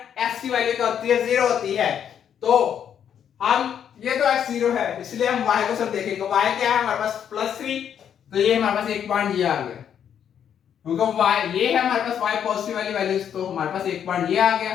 x की वैल्यू क्या होती है, 0 होती है। तो हम ये तो x0 है, इसलिए हम y को सब देखेंगे। y क्या है हमारे पास +3, तो ये हमारे पास एक पॉइंट ये आ गया, क्योंकि y ये है हमारे पास y पॉजिटिव वाली वैल्यूज, तो हमारे पास एक पॉइंट ये आ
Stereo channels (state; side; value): quieter; right; 8.8 dB